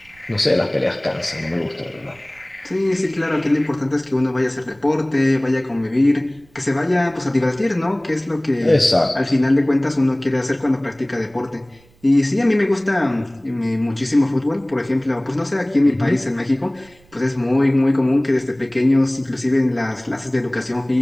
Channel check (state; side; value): noise; right; rumble, 30 dB below the sound